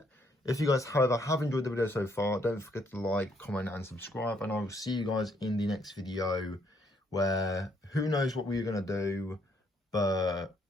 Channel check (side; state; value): both; normal; correlation 0.70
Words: If you guys, however, have enjoyed the video so far, don't forget to like, comment and subscribe, and I will see you guys in the next video, where who knows what we're going to do, but